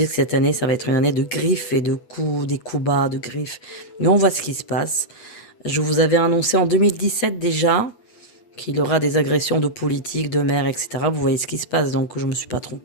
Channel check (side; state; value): right; late; 8.2 ms